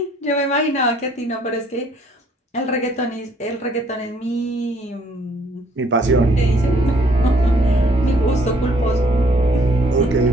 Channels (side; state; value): both; normal; correlation 0.63